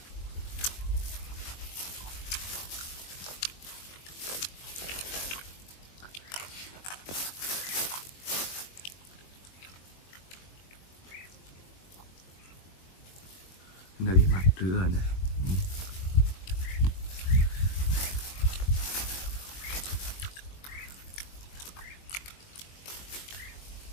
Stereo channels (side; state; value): right; late; 22 ms